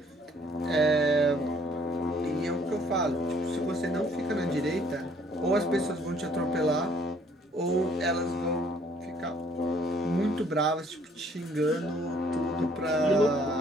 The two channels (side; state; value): both; normal; correlation 0.60